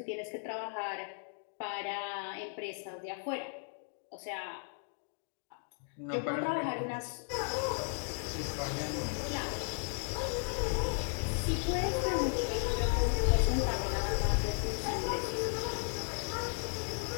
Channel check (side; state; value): right; silent; 54 dB below the other